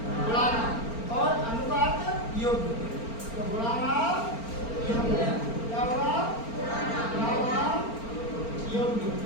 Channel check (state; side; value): late; right; 4.4 ms